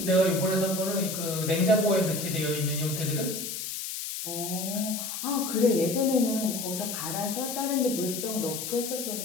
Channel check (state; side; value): noise; left; hiss, 5 dB below the sound